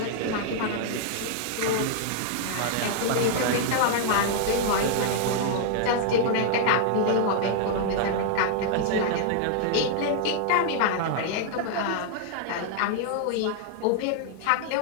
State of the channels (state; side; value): different; both; correlation 0.00